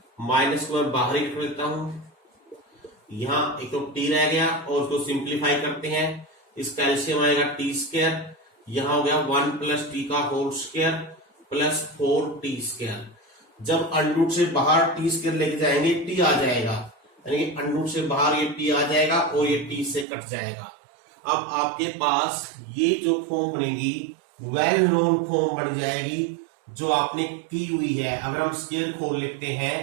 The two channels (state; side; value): drops out; left; at 20.1 s